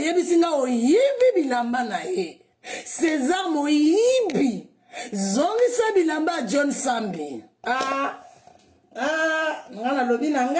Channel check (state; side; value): identical; both; correlation 1.00